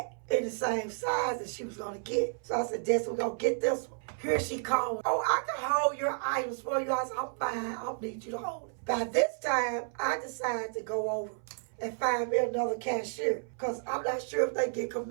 in the same size that she was going to get. So I said, Desi, we're going to get this one. Here she called, oh, I can hold your items for you. I said, I'm fine. I don't need you to hold it. By this time, I decided to go over and find me another cashier, because I'm not sure if they get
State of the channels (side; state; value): left; silent; 57 dB below the other